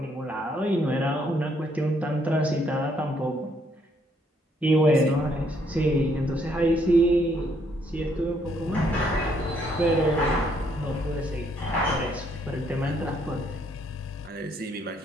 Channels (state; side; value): normal; both; correlation 0.70